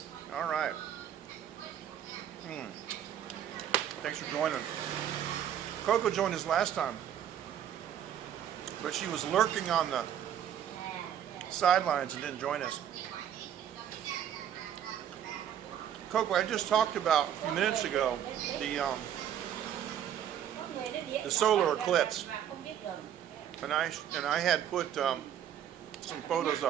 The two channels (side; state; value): left; quieter; 10.0 dB